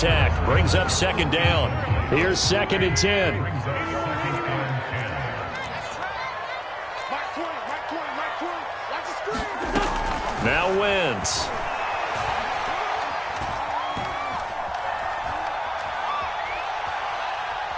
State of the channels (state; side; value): identical; both; correlation 1.00